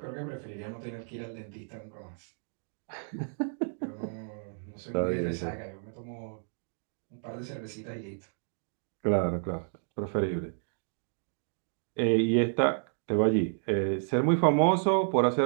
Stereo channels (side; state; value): left; silent; digital silence